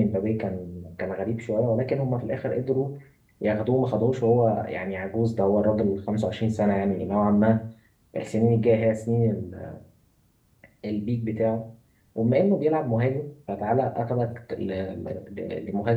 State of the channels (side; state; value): both; identical; correlation 1.00